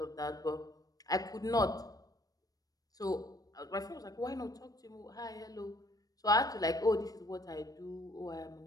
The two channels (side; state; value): right; late; 0.18 ms